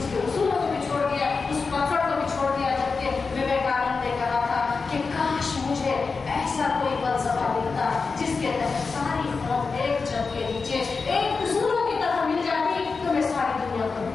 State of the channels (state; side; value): quieter; right; 4.6 dB